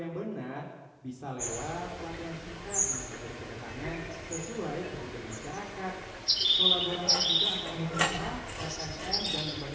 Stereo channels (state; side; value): identical; both; correlation 1.00